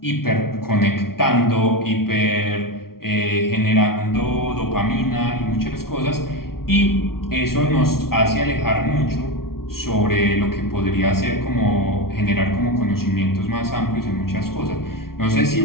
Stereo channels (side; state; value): right; late; 0.93 ms